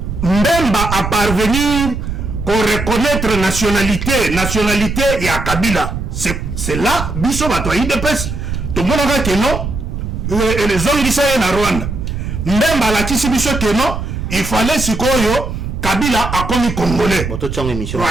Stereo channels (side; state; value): right; noise; rumble, 5 dB below the sound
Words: Mbemba a parvenir pour reconnaître nationalité ya Kabila. C'est là, biso bato IDPS, tout le monde a que non, les hommes disent na Rwanda. Mbemba la tisi biso que non, il fallait sikoyo Kabila a commis Congolais. Pour